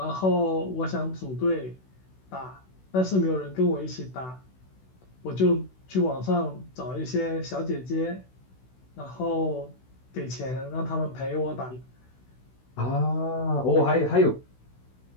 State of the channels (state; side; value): late; right; 16 ms